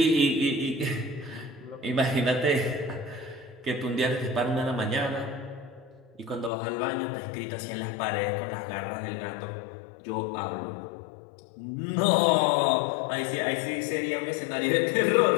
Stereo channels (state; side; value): drops out; right; at 6.5 s